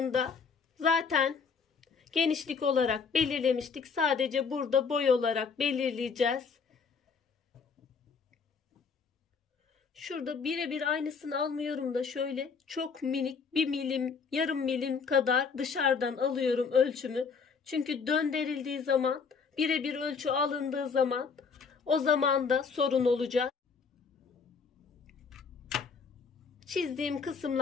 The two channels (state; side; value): quieter; right; 5.5 dB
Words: da zaten genişlik olarak belirlemiştik. Sadece burada boy olarak belirleyeceğiz. Şurada birebir aynısını almıyorum da şöyle çok minik 1 milim, yarım milim kadar dışarıdan alıyorum ölçümü. Çünkü döndürüldüğü zaman, birebir ölçü alındığı zaman o zaman da sorun olacak. Çizdiğim